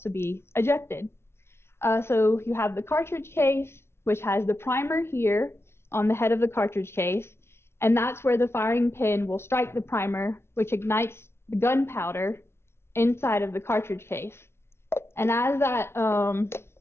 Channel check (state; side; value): late; right; 0.12 ms